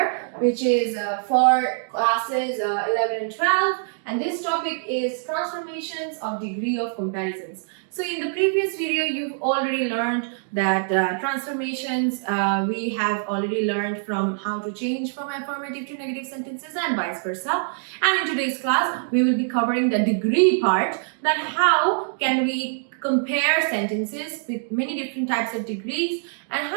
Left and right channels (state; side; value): silent; left; digital silence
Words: which is for classes 11 and 12, and this topic is transformations of degree of comparisons. So in the previous video you've already learned that transformations we have already learned from how to change from affirmative to negative sentences and vice versa. And in today's class, we will be covering the degree part, that how can we compare sentences with many different types of degrees and